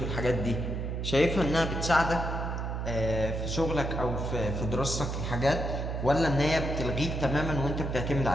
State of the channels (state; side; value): noise; right; hum, 3 dB below the sound